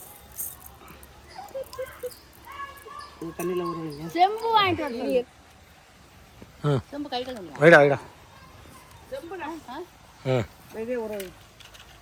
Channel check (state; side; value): identical; both; correlation 1.00